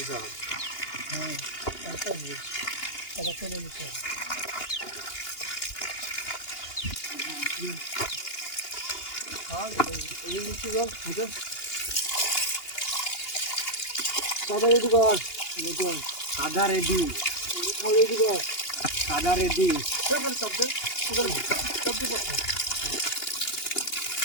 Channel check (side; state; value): right; late; 2.8 ms